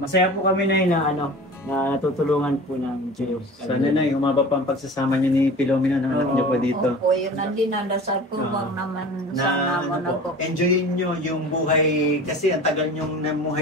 po kami na na natutulungan po ng Diyos. Sana na, humaba pa ang pagsasama niyo ni Filomeno ng anak niyo po dito. Opo, yun ang dinadasal ko bang naman sana mo na po. Enjoyin nyo yung buhay, kasi ang tagal nyong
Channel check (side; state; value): both; normal; correlation 0.38